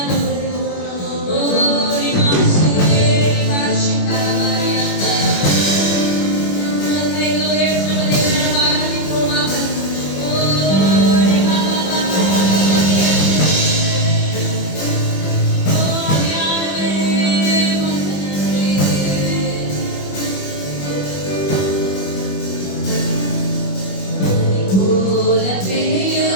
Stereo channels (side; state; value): right; late; 21 ms